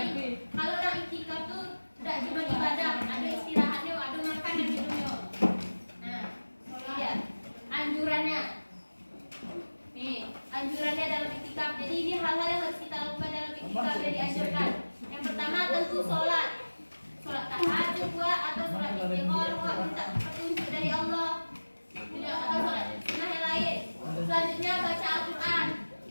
kalau orang itikaf tuh tidak cuma ibadah, ada istirahatnya, ada makan dan minumnya. Nah, ini dia anjurannya. Nih, anjurannya dalam itikaf. Jadi ini hal-hal yang harus kita lakukan dalam itikaf yang dianjurkan. Yang pertama tentu sholat tahajud atau sholat istighfar, minta petunjuk dari Allah. Tidak atau sholat sunnah yang lain. Selanjutnya baca Al-Quran,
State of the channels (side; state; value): both; inverted; correlation -1.00